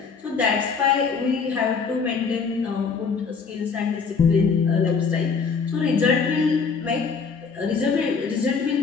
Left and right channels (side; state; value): right; quieter; 5.4 dB